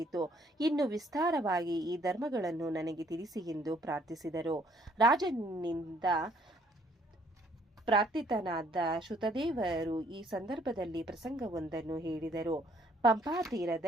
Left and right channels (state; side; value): normal; both; correlation 0.64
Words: ಇನ್ನು ವಿಸ್ತಾರವಾಗಿ ಈ ಧರ್ಮಗಳನ್ನು ನನಗೆ ತಿಳಿಸಿ ಎಂದು ಪ್ರಾರ್ಥಿಸಿದರು. ರಾಜನಿಂದ ಪ್ರಾರ್ಥಿತನಾದ ಶ್ರುತದೇವರು ಈ ಸಂದರ್ಭದಲ್ಲಿ ಪ್ರಸಂಗವೊಂದನ್ನು ಹೇಳಿದರು. ಪಂಪಾ